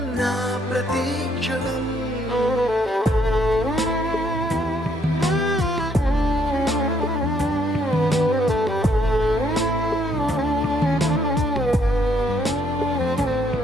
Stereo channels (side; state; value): both; normal; correlation 0.70